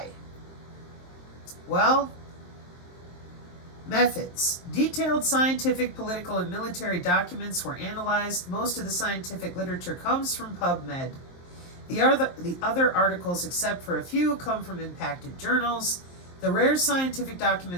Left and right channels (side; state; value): right; late; 23 ms